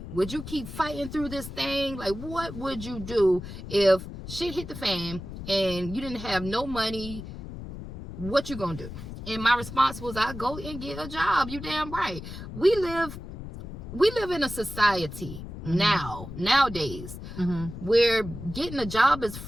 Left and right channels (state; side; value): noise; left; rumble, 10 dB below the sound